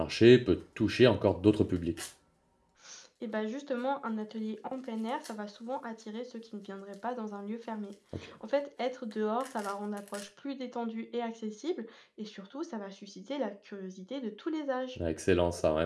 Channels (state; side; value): identical; both; correlation 1.00